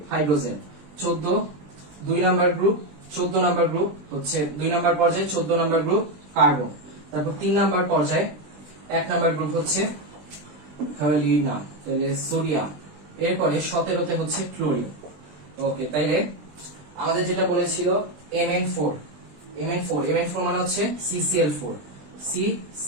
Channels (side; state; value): left; late; 20 ms